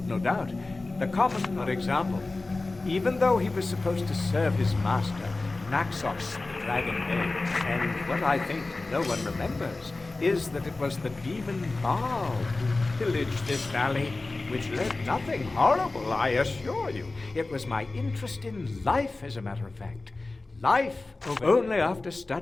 no doubt. The common, for example. Even though he was supposed to serve his master, Naxos, the Dragon Knight, and what I think no one remembers is that it was the demon Baal who pillaged this valley, which led nothing horrible, I assure you. It was my interest in life, as a matter of fact. Life. Only after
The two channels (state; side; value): quieter; right; 3.3 dB